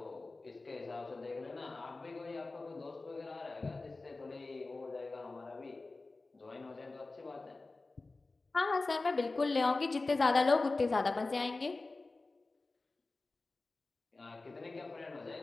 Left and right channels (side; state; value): right; quieter; 3.4 dB